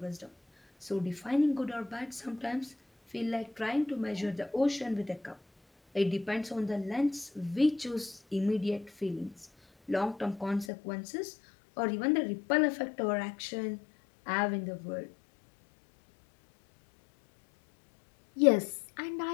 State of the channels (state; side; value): drops out; right; at 10.7 s